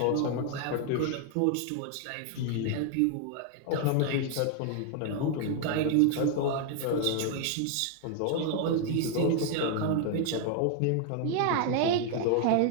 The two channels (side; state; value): both; different; correlation 0.00